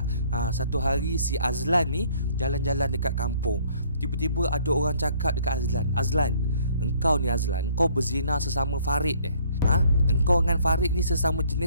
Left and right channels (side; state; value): both; inverted; correlation -0.60